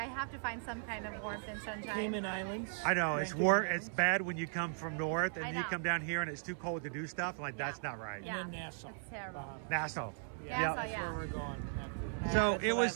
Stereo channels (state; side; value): silent; left; 53 dB below the other